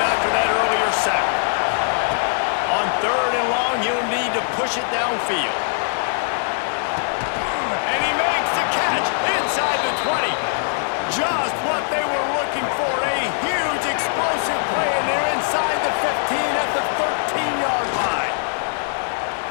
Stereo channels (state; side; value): silent; right; digital silence